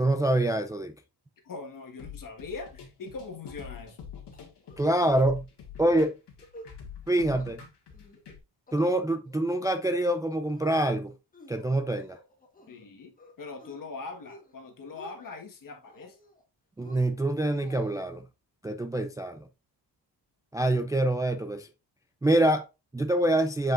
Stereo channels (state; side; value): normal; both; correlation 0.75